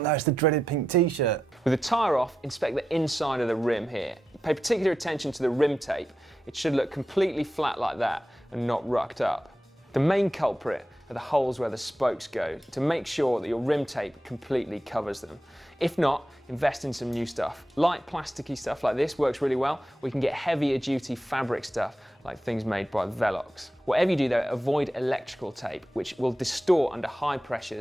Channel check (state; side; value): normal; both; correlation 0.89